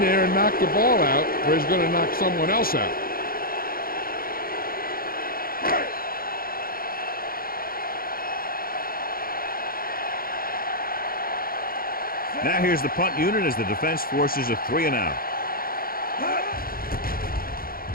there and knock the ball out, or he's going to knock someone else out. Now here's the punt unit as the defense forces a 3 and out.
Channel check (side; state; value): right; late; 0.42 ms